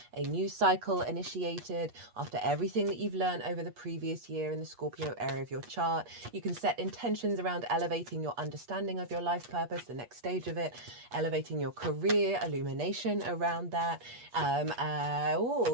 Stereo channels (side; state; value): left; late; 8.3 ms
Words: a new cycle initiated after everything that you've learned over the previous year in the Scorpio area of your chart. You can set intentions around elevating your understanding of your life purpose, the next stage of it, elevating your career, illumination around that.